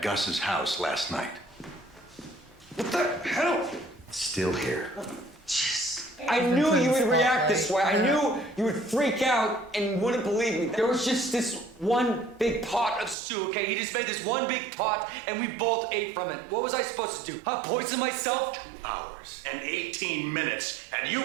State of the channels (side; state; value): left; drops out; at 13.2 s